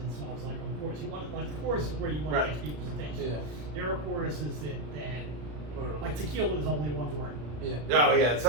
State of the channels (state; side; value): late; left; 34 ms